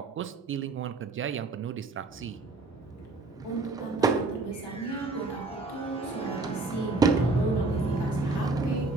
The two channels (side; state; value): left; quieter; 3.5 dB